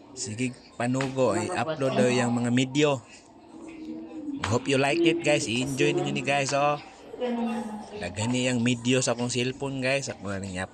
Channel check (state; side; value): identical; both; correlation 1.00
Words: Sige, panugo, i-upload daw yung mga video. Hope you like it guys. I-enjoy ninyo ni guys, oh. Nagani yung video sa akong cellphone guys. Ako na rin